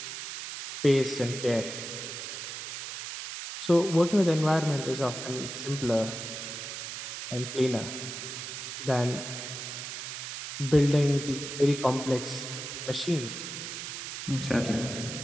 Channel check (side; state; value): right; noise; hiss, 7 dB below the sound